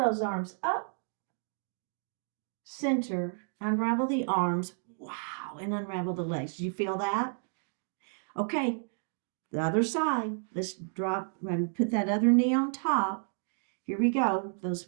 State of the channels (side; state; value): left; silent; 57 dB below the other